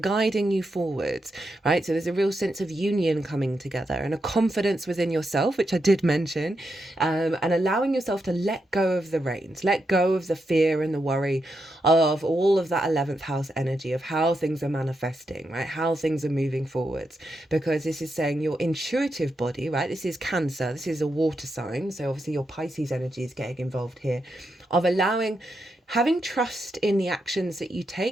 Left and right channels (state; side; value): normal; both; correlation 0.84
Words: you forwards, right? So there's a real sense of union coming together and a confidence within yourself, which I did mention, and allowing yourself to let go of the reins, let go of the fear and the worry of all of that 11th house energy of how things are manifesting, right? How things are moving forwards, because this is saying your intuitive body, right? This is Cancer, this is a water sign. So obviously your Pisces energy is getting involved here, of having trust in the actions that you